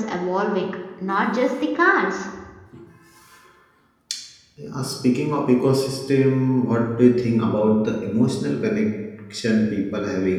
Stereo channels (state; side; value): identical; both; correlation 1.00